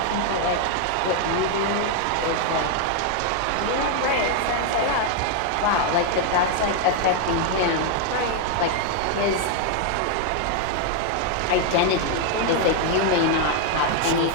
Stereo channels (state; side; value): different; both; correlation 0.00